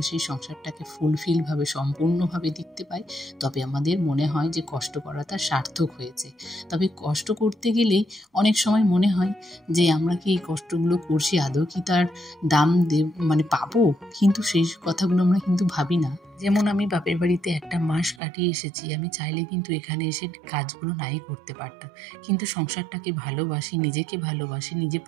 সেই সংসারটাকে ফুলফিলভাবে সম্পূর্ণভাবে দেখতে পাই, তবে আমাদের মনে হয় যে কষ্ট করাটা সার্থক হয়েছে। তবে কষ্ট করতে গেলেই অনেক সময় মনে হয় যে আমরা কি এই কষ্টগুলো করছি, আদৌ কি তার দাম পাবো? কিন্তু সেই কথাগুলো আমরা কিন্তু ভাবি না। যেমন আমি বাপের বাড়িতে একটা মাস কাটিয়ে এসেছি, আমি চাইলে কিন্তু এখানে এসে কাজগুলো নাই করতে পারতাম। কিন্তু সংসারটাকে ভালোবাসি, নিজেকে ভালোবাসি, নিজে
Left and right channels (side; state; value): left; drops out; at 18.2 s